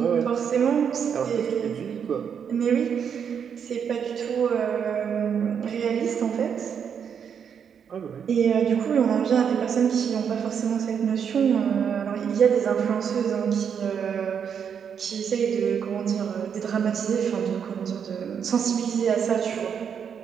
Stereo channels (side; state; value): left; quieter; 7.5 dB